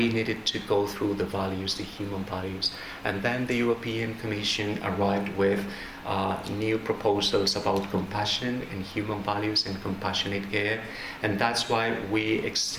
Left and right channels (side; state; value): both; identical; correlation 1.00